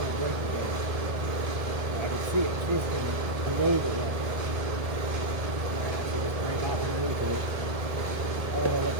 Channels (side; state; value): left; late; 1.2 ms